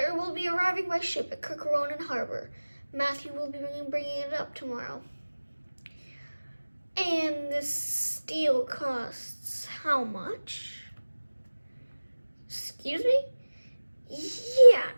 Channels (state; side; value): inverted; both; correlation -1.00